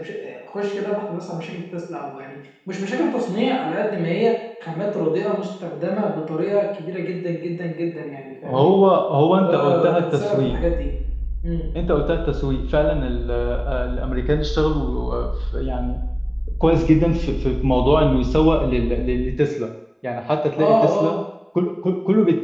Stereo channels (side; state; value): both; identical; correlation 1.00